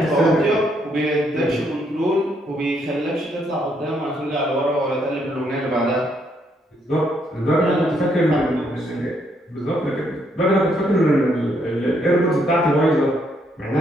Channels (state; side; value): normal; both; correlation 0.73